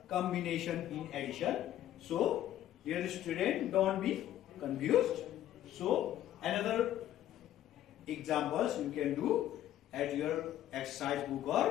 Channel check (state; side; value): quieter; right; 12.4 dB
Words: combination in addition? So, dear student, don't be confused. So, another examples you can do at your exercise book